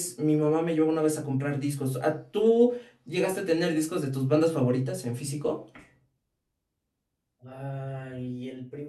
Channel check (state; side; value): identical; both; correlation 1.00